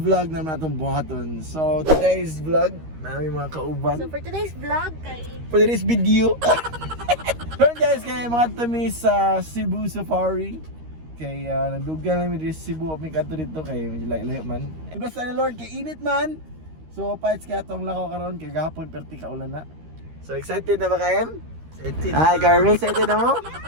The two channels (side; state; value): left; late; 13 ms